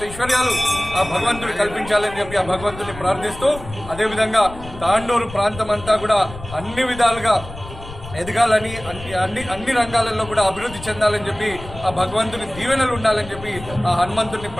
ఐశ్వర్యాలు ఆ భగవంతుడు కల్పించాలని చెప్పి ఆ భగవంతుని ప్రార్థిస్తూ, అదేవిధంగా తాండూరు ప్రాంతం అంతా కూడా అన్ని విధాలుగా ఎదగాలని, అన్ని రంగాలలో కూడా అభివృద్ధి చెందాలని చెప్పి ఆ భగవంతుని దీవెనలు ఉండాలని చెప్పి ఆ హనుమంతుడిని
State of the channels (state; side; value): noise; left; rumble, 14 dB below the sound